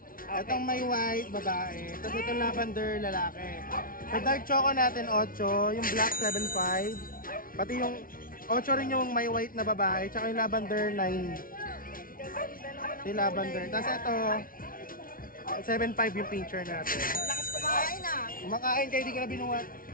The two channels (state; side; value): late; right; 0.42 ms